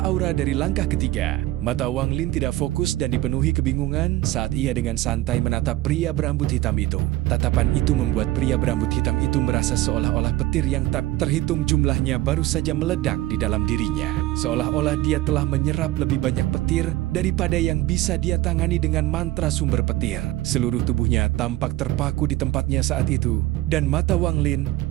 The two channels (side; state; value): left; quieter; 16.6 dB